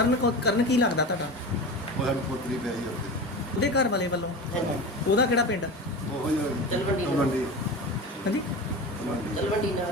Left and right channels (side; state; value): both; normal; correlation 0.29